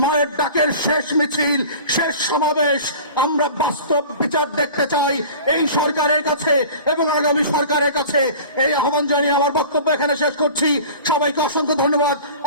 মায়ের ডাকের শেষ মিছিল, শেষ সমাবেশ, আমরা বাস্তব বিচার দেখতে চাই এই সরকারের কাছে এবং আগামী সরকারের কাছে। এই আহ্বান জানিয়ে আমার বক্তব্য এখানে শেষ করছি। সবাইকে অসংখ্য ধন্যবাদ।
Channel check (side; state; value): both; inverted; correlation -0.40